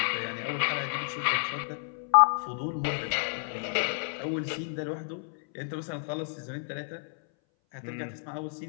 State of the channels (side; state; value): right; silent; 58 dB below the other